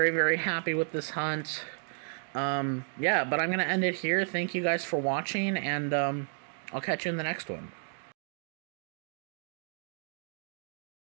very happy with this hunt. Yeah, but I'm going to end it here. Thank you guys for watching, and I'll catch you in the next one.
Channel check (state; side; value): silent; left; digital silence